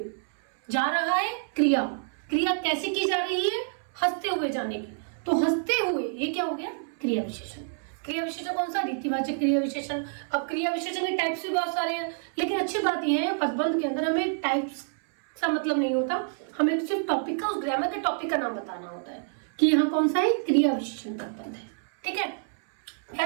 जा रहा है क्रिया, क्रिया कैसे की जा रही है, हंसते हुए जाने की, तो हंसते हुए ये क्या हो गया, क्रिया विशेषण। क्रिया विशेषण कौन सा, रीतिवाचक क्रिया विशेषण। अब क्रिया विशेषण के टाइप्स भी बहुत सारे हैं, लेकिन अच्छी बात यह है पदबंध के अंदर हमें टाइप्स का मतलब नहीं होता, हमें सिर्फ टॉपिक का, उस ग्रामर के टॉपिक का नाम बताना होता है कि यहाँ कौन सा है, क्रिया विशेषण पदबंध है। ठीक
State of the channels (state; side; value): silent; left; 60 dB below the other